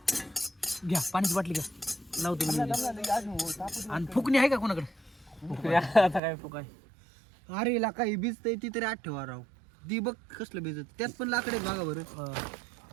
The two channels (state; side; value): drops out; left; at 6.2 s